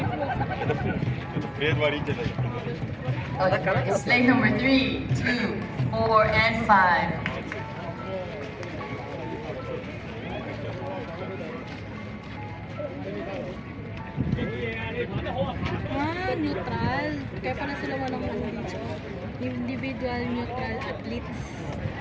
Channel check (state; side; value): identical; both; correlation 1.00